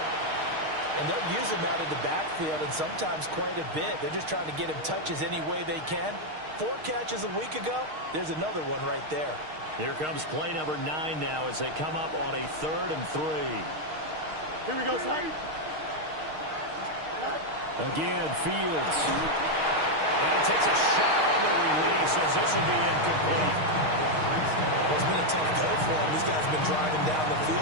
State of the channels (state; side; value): late; left; 6.5 ms